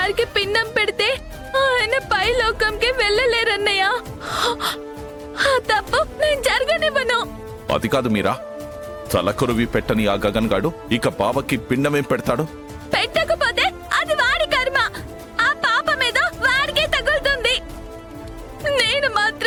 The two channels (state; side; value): identical; both; correlation 1.00